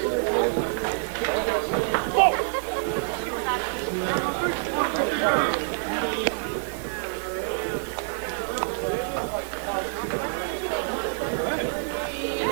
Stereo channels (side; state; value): left; silent; 55 dB below the other